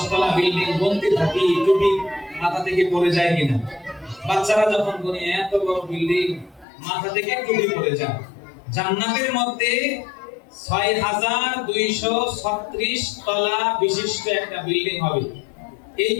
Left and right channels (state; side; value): drops out; right; at 6.7 s